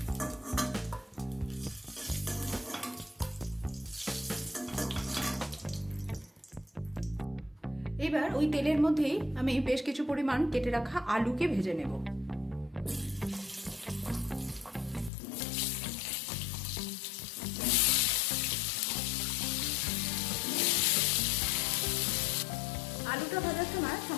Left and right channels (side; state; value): right; drops out; at 15.1 s